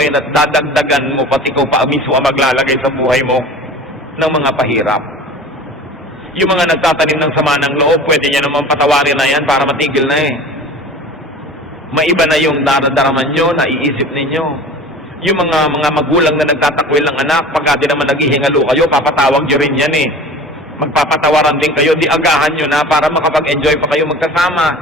at dadagdagan mo pati ko pa mismo ang maglalagay sa buhay mo ng mga pahirap? Yung mga nagtatanim ng sama ng loob, pwede niya naman patawarin na yan para matigil na eh. Maiba na yung daradaraman nyo, naiisip ninyo. Yung mga magulang na nagtatakwil ng anak, pagka di naman naghihingalo kayo, papatawag nyo rin yan eh. Magpapatawaran din kayo, di agahan nyo na para makapag-enjoy pa kayo magkasama.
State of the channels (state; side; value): normal; both; correlation 0.40